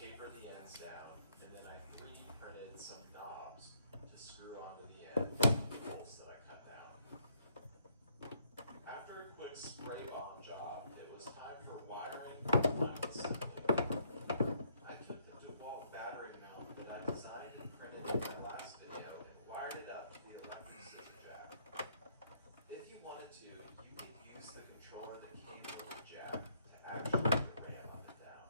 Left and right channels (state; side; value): inverted; both; correlation -0.70